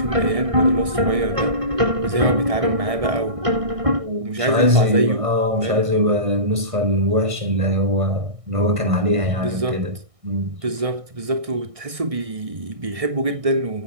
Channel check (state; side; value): late; left; 1.5 ms